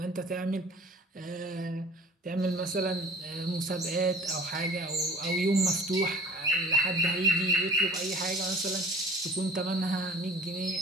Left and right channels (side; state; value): both; normal; correlation 0.47